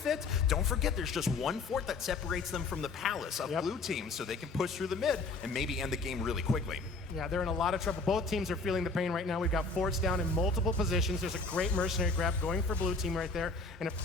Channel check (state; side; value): quieter; right; 3.7 dB